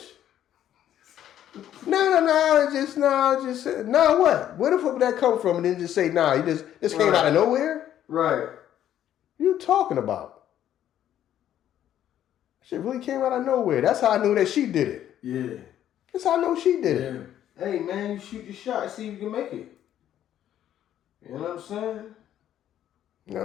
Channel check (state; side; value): quieter; right; 11.2 dB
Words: No, what? Where the fuck would that come from? And then just say, nah, you just came out of nowhere? Right. You talking about? Shit really came out of nowhere. That's how I knew that she did it. Yeah. That's how I know she did it. Hey, man, you shoot your shot and see if you can make it. You know what I'm saying? You